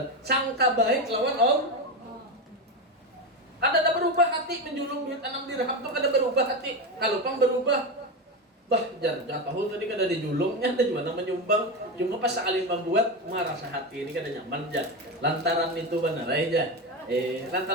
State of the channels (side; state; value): both; normal; correlation 0.16